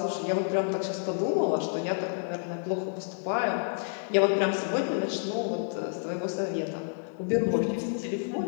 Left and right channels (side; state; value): right; silent; digital silence